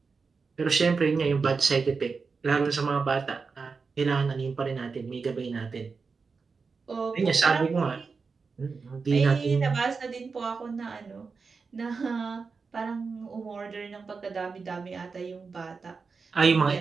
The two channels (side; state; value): left; quieter; 4.8 dB